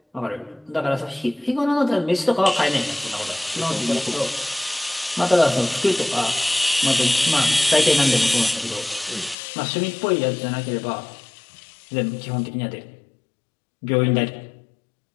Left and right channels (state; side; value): drops out; right; at 9.3 s